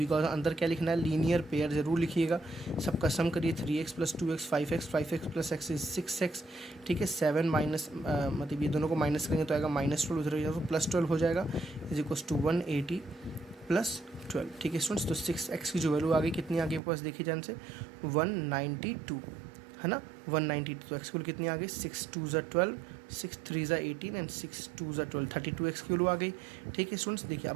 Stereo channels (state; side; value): drops out; left; at 16.8 s